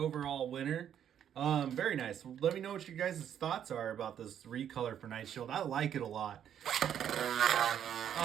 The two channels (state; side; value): quieter; left; 9.5 dB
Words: winner. Very nice. Let me know what you guys' thoughts are about this recolor for Knight Shield. I like it a lot.